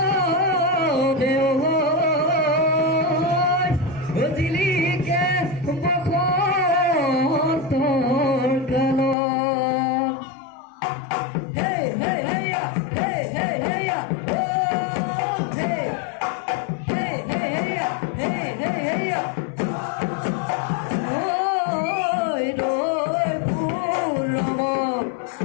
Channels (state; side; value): drops out; right; at 9.2 s